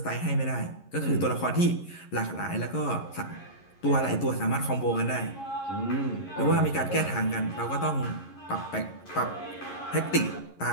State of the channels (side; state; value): right; late; 11 ms